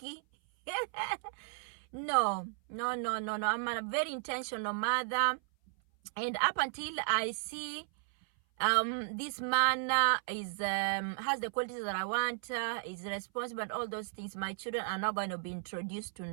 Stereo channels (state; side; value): silent; left; 55 dB below the other